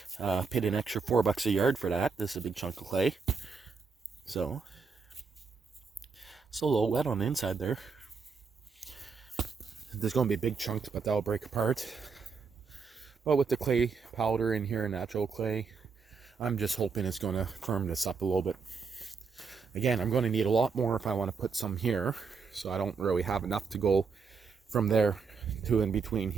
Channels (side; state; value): left; quieter; 5.2 dB